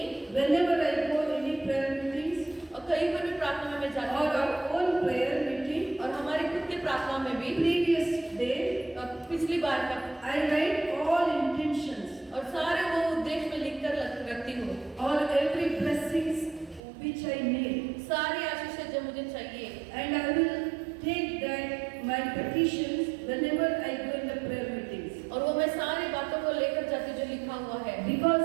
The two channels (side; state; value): left; drops out; at 16.8 s